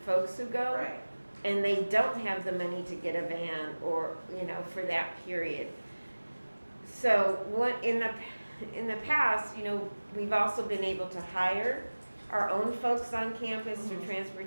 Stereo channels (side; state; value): both; inverted; correlation -1.00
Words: folks who go. Right. And they don't have the money to get a van or, for that period. So what in the past, we've also been able to hire our own folks on campus through